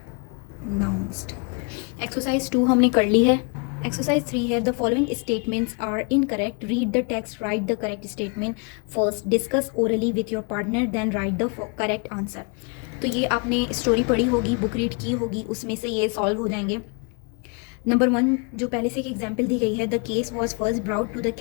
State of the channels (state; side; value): quieter; right; 36.0 dB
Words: Exercise 2 हमने कर ली है. Exercise 3 है. The following statements are incorrect. Read the text, write the correct statement first. Discuss orally with your partner, then write the correct answer. तो ये आपने स्टोरी पढ़ी होगी, book read की होगी, उसमें से ये सॉल्व हो जाएंगे. नंबर 1 जो पहले से एक एग्जाम्पल दी गई है, the case was first brought to the